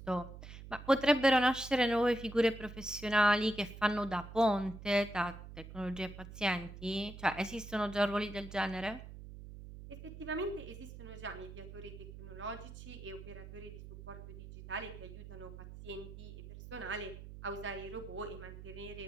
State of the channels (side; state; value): right; noise; hum, 13 dB below the sound